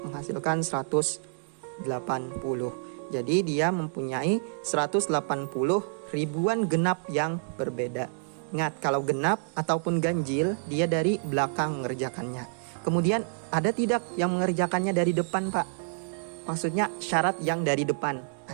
menghasilkan 180. Jadi dia mempunyai 180 ribuan genap yang berbeda. Ingat, kalau genap ataupun ganjil dia dari belakang mengerjakannya. Kemudian ada tidak yang mengerjakannya dari depan, Pak? Maksudnya syarat yang dari depan.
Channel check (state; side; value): silent; left; digital silence